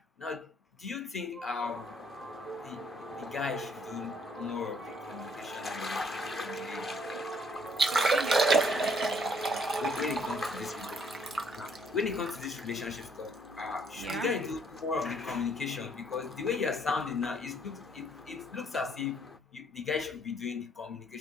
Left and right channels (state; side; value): normal; both; correlation 0.66